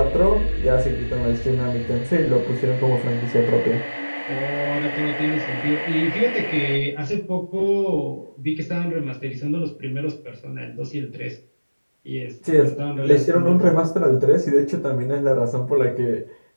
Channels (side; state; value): both; inverted; correlation -1.00